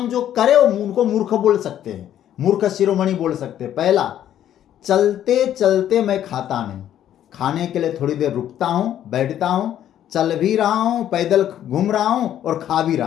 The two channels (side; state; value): right; quieter; 11.0 dB